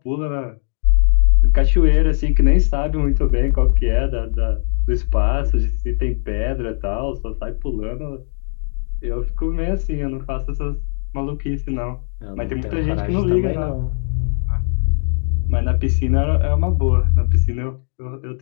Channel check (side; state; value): right; silent; 64 dB below the other